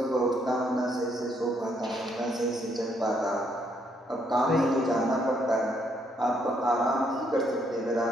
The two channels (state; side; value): normal; both; correlation 0.72